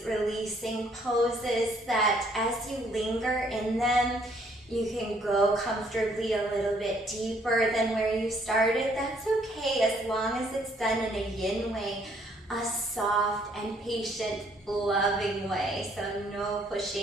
releasing poses that as you linger in them, you can go comfortably a little bit deeper than where you started. That's okay as long as it's done in a yin way, a soft and patient, loving way. So no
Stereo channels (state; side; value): normal; both; correlation 0.65